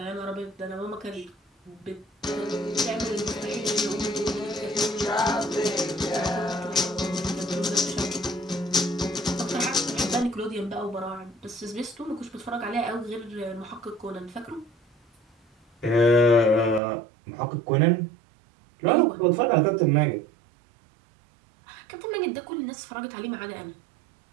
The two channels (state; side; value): drops out; left; at 16.8 s